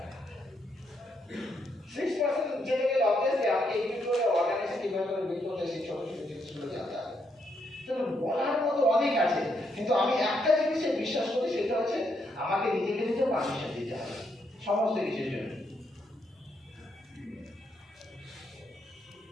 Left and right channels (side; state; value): both; normal; correlation 0.77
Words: 6% যেতে গেলে অবভিয়াসলি আমাকে একটু করে অর্গানাইজেশন কিভাবে করে বিল্ড করতে সেই ছোট ছোট জিনিসগুলো জানতে হবে। তো বলার মতো অনেক আছে, কিন্তু আমি একটা জিনিসে বিশ্বাস করি, সেটা হচ্ছে আমাকে নিজেকে নিজে পারমিশন দিতে হবে সমস্ত কিছুর জন্য।